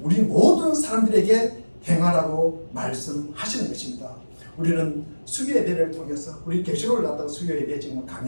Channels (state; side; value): inverted; both; correlation -1.00